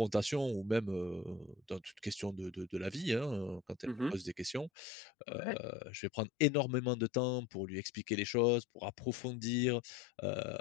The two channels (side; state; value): right; drops out; at 4.7 s